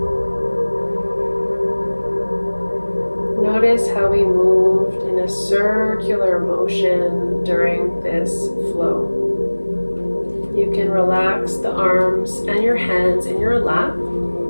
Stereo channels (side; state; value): both; inverted; correlation -1.00